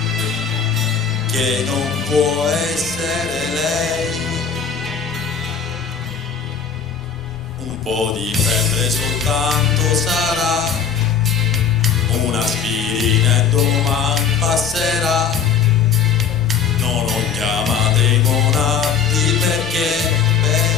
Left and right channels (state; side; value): quieter; right; 6.6 dB